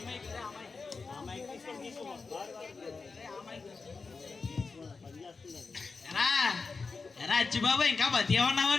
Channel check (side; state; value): right; quieter; 4.4 dB